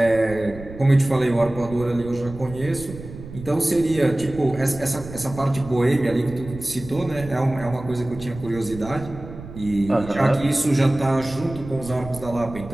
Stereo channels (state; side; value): noise; right; rumble, 14 dB below the sound